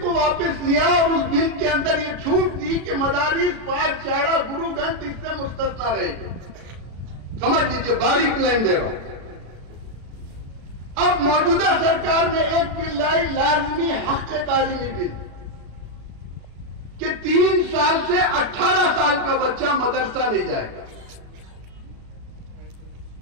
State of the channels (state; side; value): late; left; 36 ms